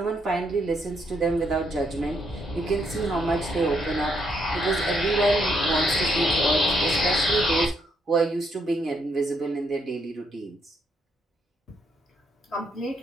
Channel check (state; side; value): normal; both; correlation 0.74